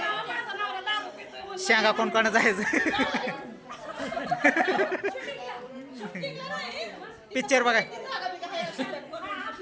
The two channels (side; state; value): both; identical; correlation 1.00